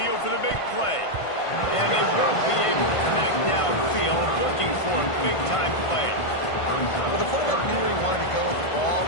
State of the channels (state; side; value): late; right; 1.5 ms